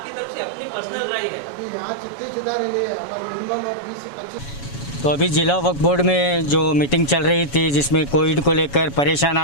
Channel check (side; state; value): right; late; 7.1 ms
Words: तरफ से अपनी पर्सनल राय है। अभी यहाँ जितने सुधार है हमारे मिनिमम 20 से 25। तो अभी ज़िला वक्फ बोर्ड में जो मीटिंग चल रही थी, जिसमें कोविड को लेकर परेशान